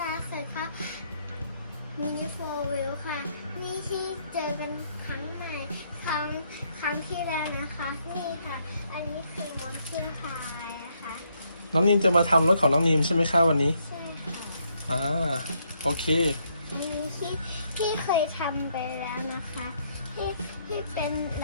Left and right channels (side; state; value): both; inverted; correlation -0.73